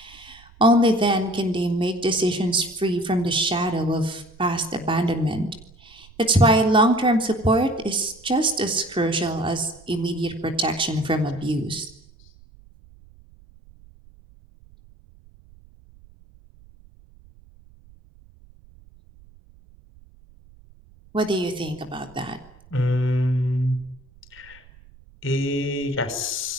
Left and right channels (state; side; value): noise; right; rumble, 26 dB below the sound